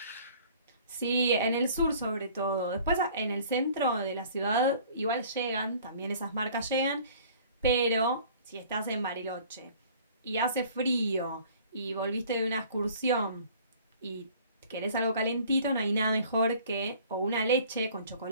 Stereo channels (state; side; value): inverted; both; correlation -0.51